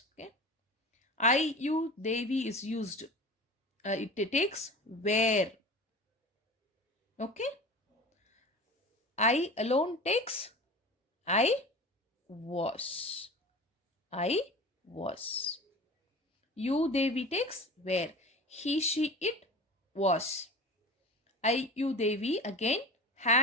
Okay. I, you, they, we is used. It takes where. Okay. I alone takes I was. I was. You, they, we takes where. He, she, it was. I, you, they, we again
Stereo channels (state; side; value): normal; both; correlation 0.35